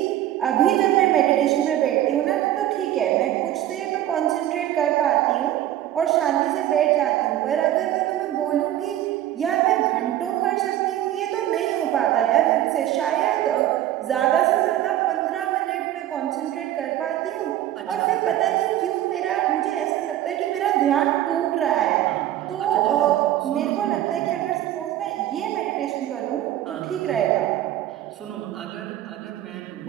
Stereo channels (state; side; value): quieter; left; 12.9 dB